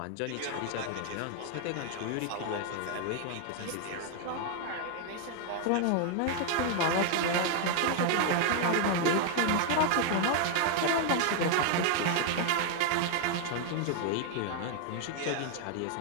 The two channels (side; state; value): both; different; correlation 0.00